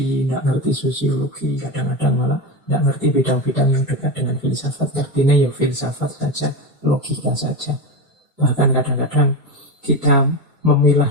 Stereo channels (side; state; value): both; normal; correlation 0.18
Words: nggak ngerti sosiologi, kadang-kadang malah nggak ngerti bidang-bidang yang dekat dengan filsafat. Ngertinya ya filsafat saja, logika saja. Bahkan kadang-kadang kita memilah